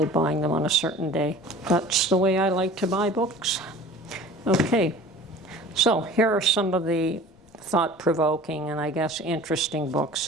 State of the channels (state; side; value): noise; left; rumble, 29 dB below the sound